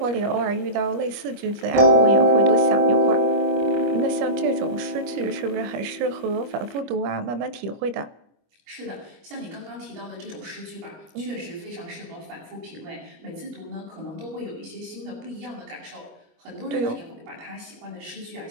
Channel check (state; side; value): late; left; 25 ms